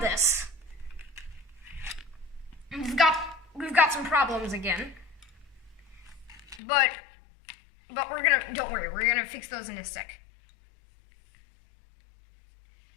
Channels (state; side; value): drops out; right; at 6.6 s